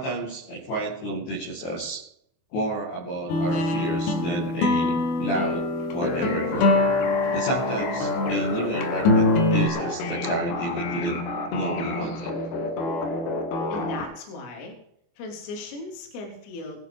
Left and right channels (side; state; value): right; late; 24 ms